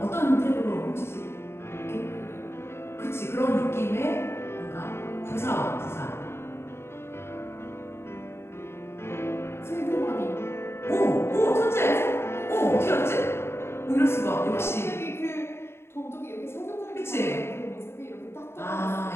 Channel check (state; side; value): late; right; 0.12 ms